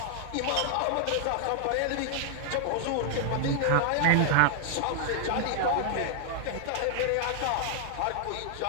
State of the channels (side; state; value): both; different; correlation 0.00